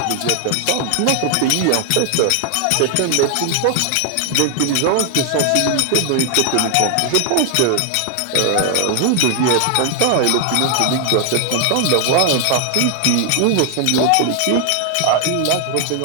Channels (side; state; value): both; different; correlation 0.00